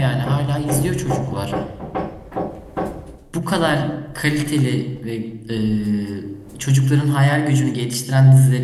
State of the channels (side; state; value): both; identical; correlation 1.00